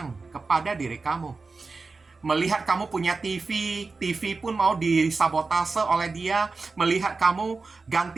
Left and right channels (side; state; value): left; quieter; 4.1 dB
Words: kepada diri kamu. Melihat kamu punya TV pun mau disabotase oleh dia. Melihat kamu